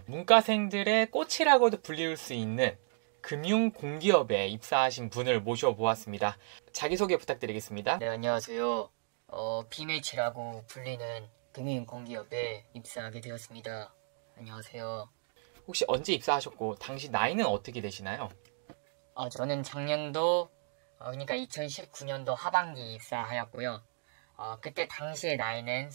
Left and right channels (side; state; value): left; silent; digital silence